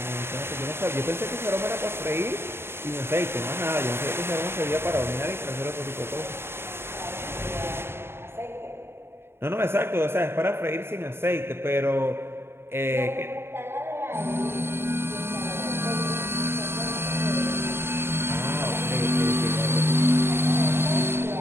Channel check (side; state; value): left; late; 0.11 ms